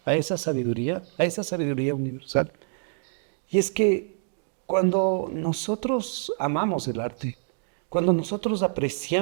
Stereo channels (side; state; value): left; silent; digital silence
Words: esa sabiduría universal. Y es que cuando nosotros amamos el arte, cuando nosotros